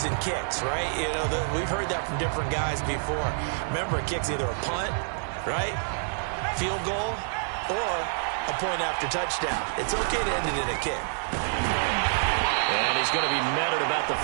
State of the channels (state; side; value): silent; left; digital silence